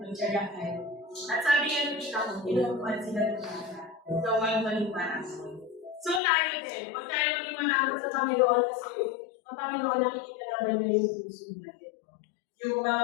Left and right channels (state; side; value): drops out; right; at 6.2 s